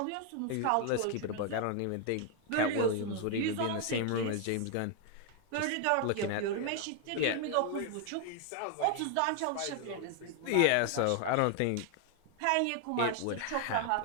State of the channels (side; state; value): both; different; correlation 0.00